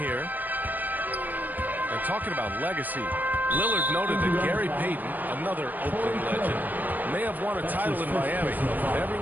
And talking about legacy, Lillard noted that Gary Payton, another Oakland legend, may have won a title in Miami, but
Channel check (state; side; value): late; left; 0.085 ms